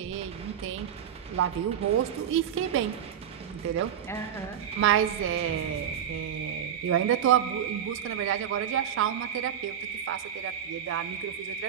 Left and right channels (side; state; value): left; quieter; 9.3 dB